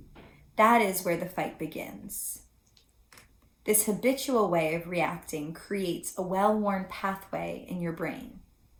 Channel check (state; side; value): identical; both; correlation 1.00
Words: That is where the fight begins. This habitual way of reacting creates a well-worn pathway in your brain.